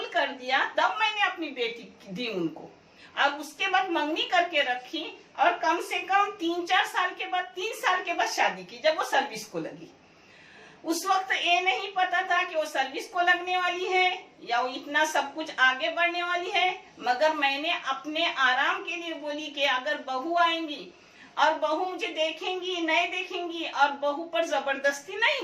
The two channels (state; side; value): identical; both; correlation 1.00